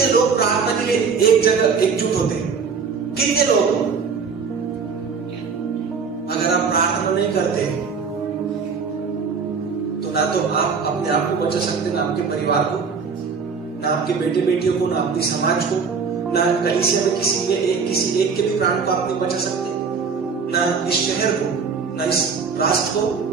लोग प्रार्थना के लिए एक जगह एकजुट होते हैं? कितने लोग? अगर आप प्रार्थना नहीं करते तो ना तो आप अपने आप को बचा सकते, ना आपके परिवार को, ना आपके बेटे बेटियों को, ना अपनी समाज को, ना कलीसिया में किसी एक के भी प्राण को आप नहीं बचा सकते, ना इस शहर को, ना इस राष्ट्र को,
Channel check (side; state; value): left; quieter; 5.5 dB